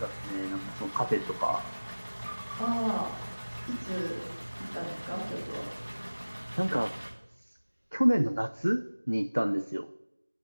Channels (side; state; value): both; inverted; correlation -1.00